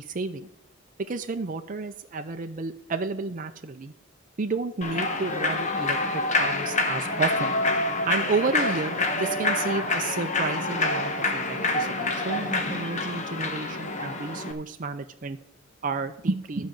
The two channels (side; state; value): both; normal; correlation -0.02